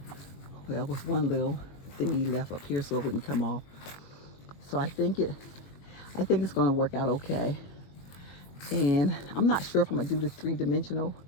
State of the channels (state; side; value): late; right; 21 ms